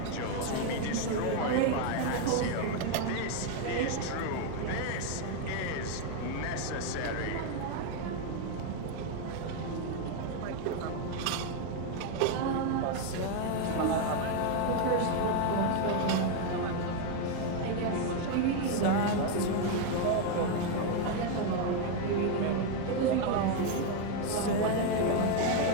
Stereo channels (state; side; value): different; both; correlation 0.01